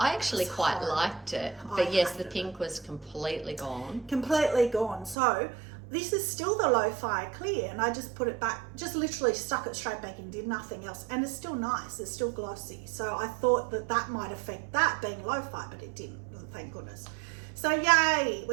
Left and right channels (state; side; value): drops out; left; at 5.2 s